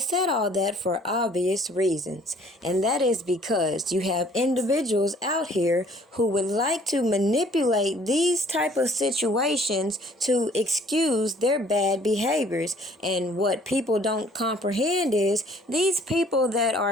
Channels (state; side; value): normal; both; correlation 0.57